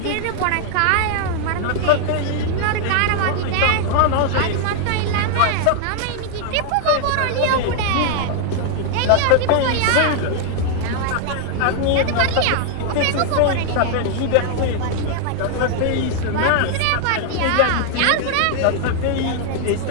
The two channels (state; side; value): different; both; correlation 0.00